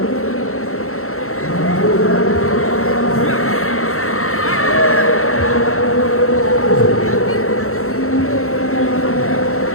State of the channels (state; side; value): late; right; 0.63 ms